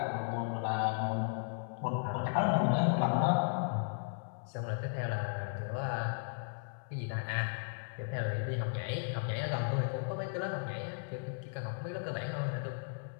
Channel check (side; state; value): right; silent; 54 dB below the other